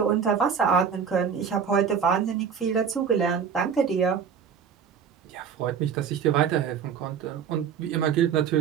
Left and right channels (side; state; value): left; quieter; 7.1 dB